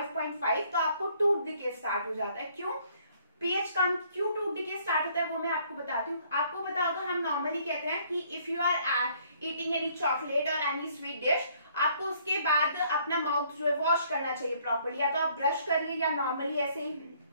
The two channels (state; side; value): inverted; both; correlation -0.63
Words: तो आपको टूथ डिके स्टार्ट हो जाता है। क्यों pH कम, क्यों टूथ डिके स्टार्ट होता है वो मैं आपको बताती हूँ। आपको पता होगा हम नॉर्मली कहते हैं कि if you are eating any chocolate और एनी स्वीट डिश, आपको उसके बाद अपना माउथ जो है वॉश करना चाहिए प्रॉपर्ली, या तो आप ब्रश करिए या नॉर्मली ऐसे ही